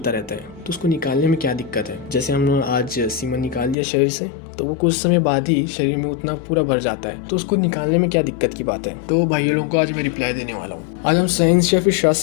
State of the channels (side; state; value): right; drops out; at 3.8 s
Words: रहता है, तो उसको निकालने में क्या दिक्कत है। जैसे हमने आज सीमन निकाल दिया शरीर से, तो वो कुछ समय बाद ही शरीर में उतना पूरा भर जाता है, तो उसको निकालने में क्या दिक्कत की बात है। तो भाइयों लोगों को आज मैं रिप्लाई देने वाला हूँ। आज हम साइंस या फिर